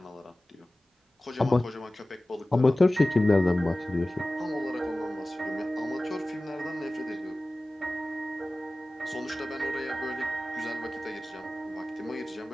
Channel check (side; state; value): both; normal; correlation 0.97